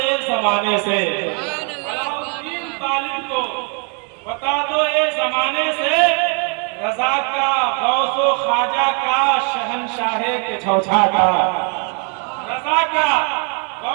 ایک زمانے سے، علاء الدین طالب کو بتا دو اے زمانے سے، رضا کا غوث و خواجہ کا شہنشاہ کے چھوچھا کا، رضا کا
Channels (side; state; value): left; quieter; 37.8 dB